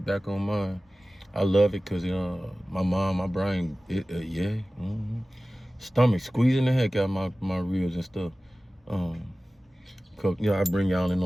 back on mine. I love it because my brain, yeah. Stomach squeezing the heck out of my ribs and stuff. I bring y'all in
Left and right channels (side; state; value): both; normal; correlation 0.97